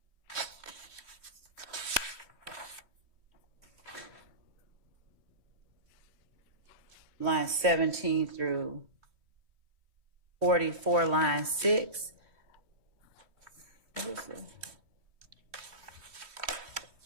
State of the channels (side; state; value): left; late; 3.2 ms